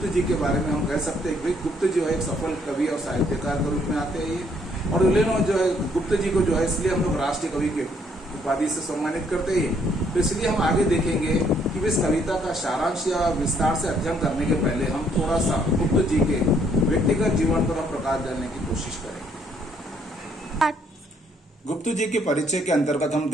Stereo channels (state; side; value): normal; both; correlation 0.67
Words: जी के बारे में हम कह सकते हैं कि गुप्त जो है एक सफल कवि और साहित्यकार के रूप में आते हैं ये। और जो है गुप्त जी को जो है इसलिए हम लोग राष्ट्रीय कवि के उपाधि से सम्मानित करते हैं। तो इसलिए हम आगे देखेंगे कि इस कविता का सारांश या विस्तार से अध्ययन करने के पहले हम थोड़ा सा गुप्त जी के व्यक्तिगत जीवन पर हम प्रकाश डालने की कोशिश करेंगे। गुप्त जी के परिचय के अंतर्गत हम